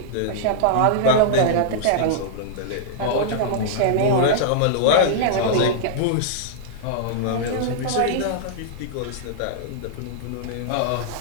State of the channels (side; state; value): both; different; correlation -0.02